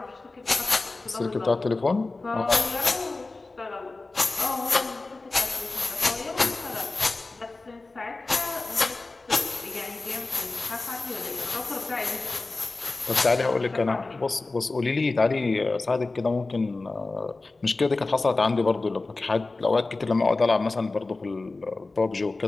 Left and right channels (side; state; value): right; quieter; 3.4 dB